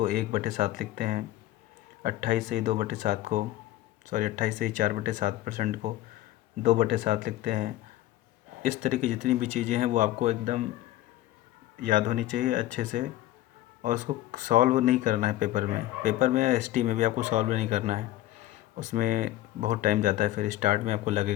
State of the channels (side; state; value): right; quieter; 15.4 dB